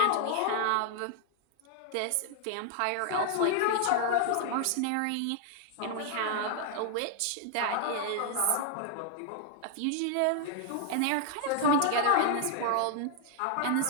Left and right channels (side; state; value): both; different; correlation 0.00